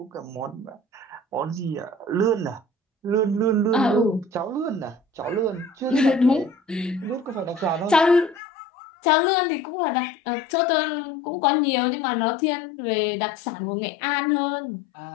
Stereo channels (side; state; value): right; drops out; at 8.4 s